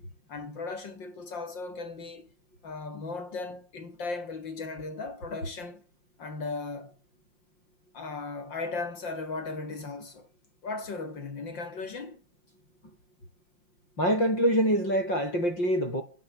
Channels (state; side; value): late; right; 5.7 ms